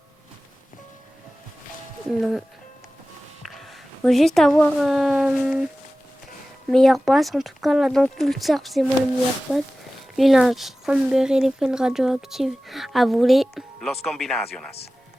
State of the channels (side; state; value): both; normal; correlation 0.96